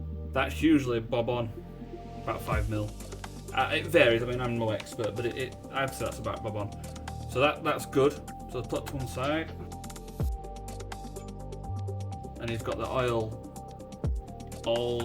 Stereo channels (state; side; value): identical; both; correlation 1.00